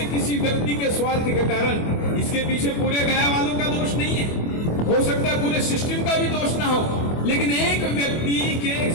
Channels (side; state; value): right; late; 24 ms